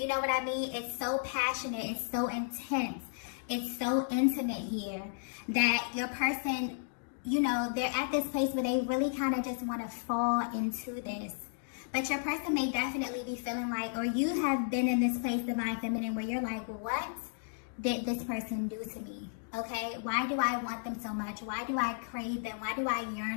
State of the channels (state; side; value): silent; right; digital silence